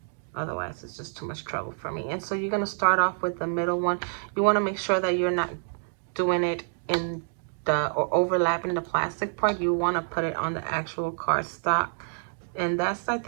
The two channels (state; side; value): silent; left; digital silence